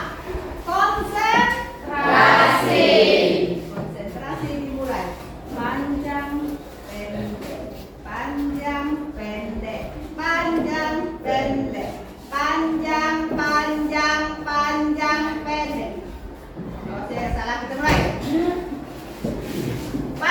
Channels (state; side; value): identical; both; correlation 1.00